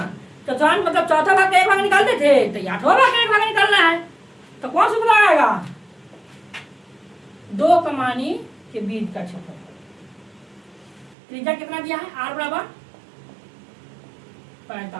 चतुर्थांश मतलब चौथा भाग का एक भाग निकालते थे, तो 8वां भाग का एक भाग निकालना है। तो कौन सा सूत्र आएगा? 2 कमानी के बीच का क्षेत्रफल। त्रिज्या कितना दिया है? आर बराबर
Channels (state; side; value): drops out; left; at 11.2 s